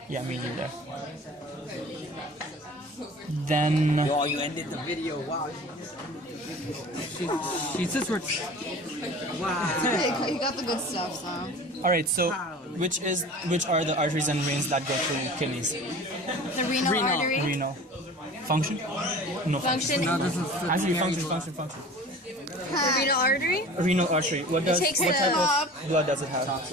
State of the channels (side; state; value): both; normal; correlation 0.41